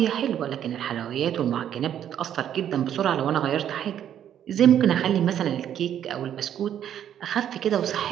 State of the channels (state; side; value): quieter; left; 10.1 dB